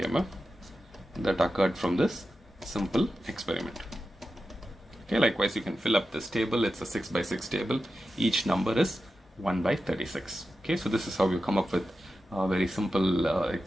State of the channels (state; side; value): normal; both; correlation 0.91